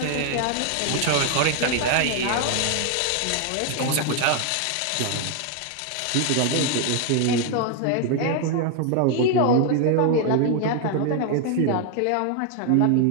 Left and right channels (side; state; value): both; different; correlation 0.00